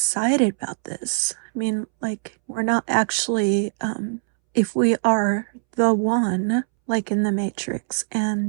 about this? I mean, like, we're not actually, if we are the one, like in the Matrix,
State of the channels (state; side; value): silent; left; 64 dB below the other